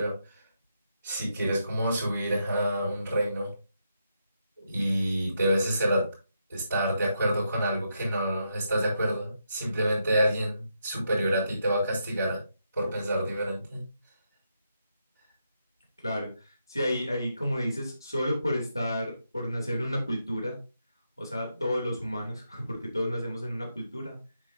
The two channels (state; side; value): inverted; both; correlation -0.81